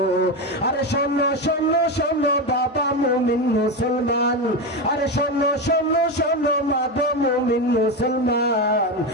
আরে শোনো শোনো শোনো বাবা মুমিন মুসলমান, আরে শোনো শোনো শোনো মা গো মুমিন মুসলমান।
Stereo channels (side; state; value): both; normal; correlation 0.15